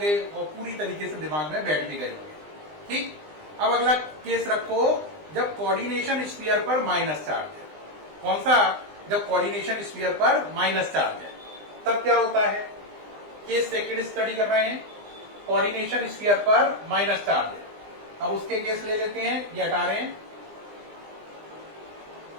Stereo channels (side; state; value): left; late; 20 ms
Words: और पूरी तरीके से दिमाग में बैठ भी गए होंगे। ठीक, अब अगला केस रखो जब कोऑर्डिनेशन स्फीयर पर माइनस चार्ज है। कौन सा, जब कोऑर्डिनेशन स्फीयर पर माइनस चार्ज है, तब क्या होता है। केस सेकंड स्टडी कर रहे हैं, कोऑर्डिनेशन स्फीयर पर माइनस चार्ज है। अब उसके केस ले लेते हैं, ये हटा रहे हैं।